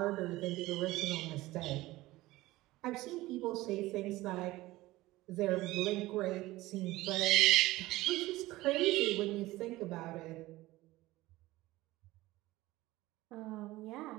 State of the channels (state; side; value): quieter; left; 18.2 dB